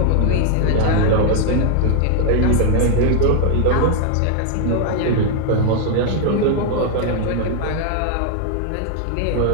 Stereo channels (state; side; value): different; both; correlation 0.00